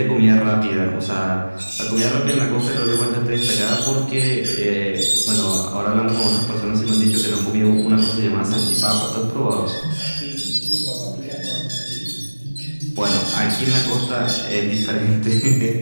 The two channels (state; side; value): inverted; both; correlation -1.00